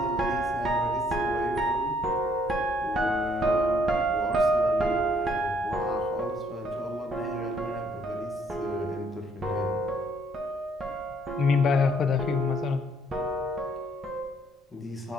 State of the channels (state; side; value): normal; both; correlation 0.66